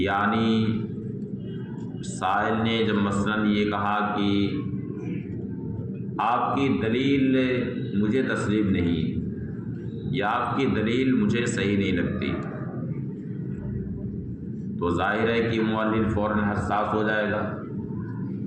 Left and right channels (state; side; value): identical; both; correlation 1.00